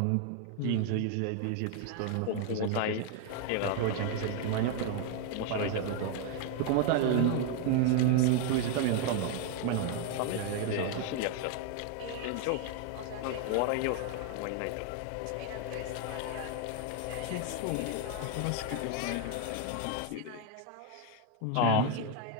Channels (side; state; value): both; different; correlation 0.00